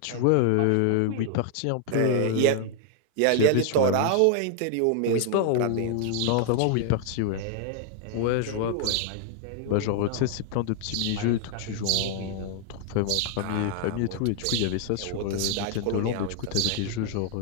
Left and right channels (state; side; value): different; both; correlation 0.00